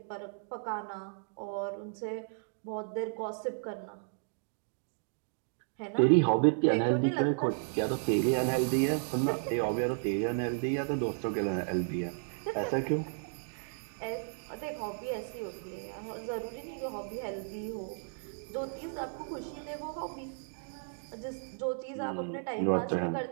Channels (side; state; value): left; silent; digital silence